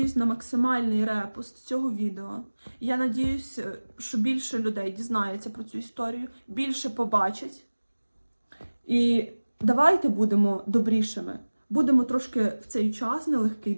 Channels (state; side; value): inverted; both; correlation -1.00